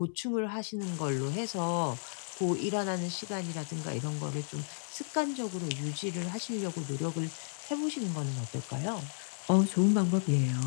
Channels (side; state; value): right; silent; 55 dB below the other